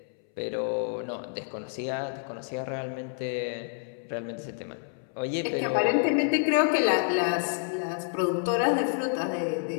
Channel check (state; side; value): silent; right; 59 dB below the other